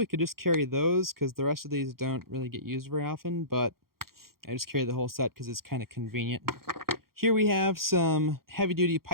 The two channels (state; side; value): late; left; 0.93 ms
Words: could just carry those because the rest of these don't really get used very often, but I just carry the whole set because it's kind of convenient. Here we have some heavy-duty